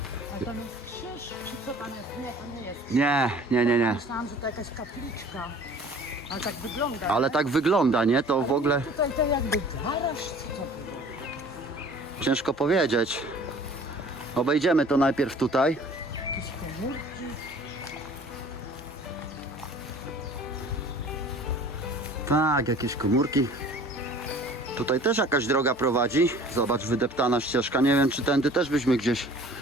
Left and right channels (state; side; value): normal; both; correlation 0.48